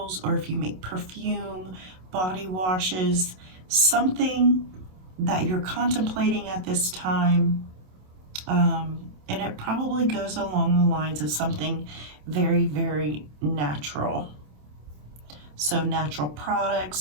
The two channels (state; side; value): late; left; 27 ms